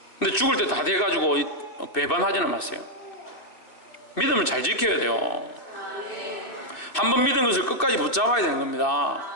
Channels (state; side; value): late; right; 2.5 ms